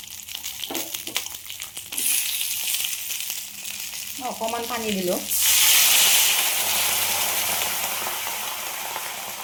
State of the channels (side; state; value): both; identical; correlation 1.00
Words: অকণমান পানী দিলোঁ।